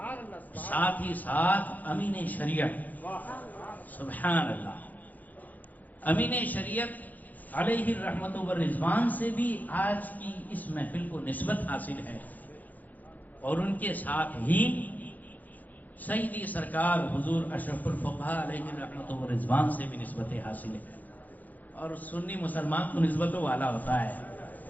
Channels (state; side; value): late; right; 0.081 ms